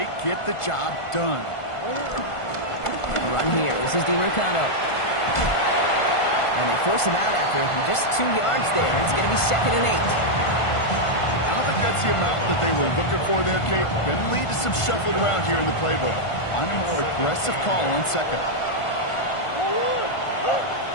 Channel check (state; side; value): late; right; 1.5 ms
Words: get the job done. A run here. This is DiMercado. And they force him out after just 2 yards there. It's going to be second and 8. I don't think that's the amount that they were looking for there, Kate. Going to lead to some shuffling around here in the playbook. Find a more aggressive call on second.